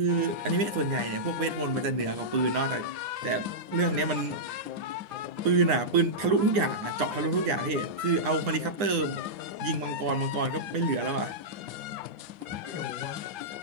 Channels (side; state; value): left; late; 9.8 ms